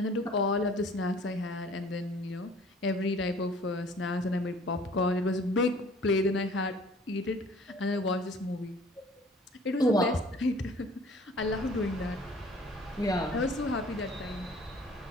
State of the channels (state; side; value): normal; both; correlation 0.52